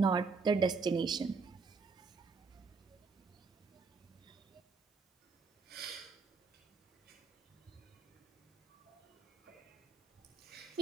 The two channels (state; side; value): quieter; left; 4.6 dB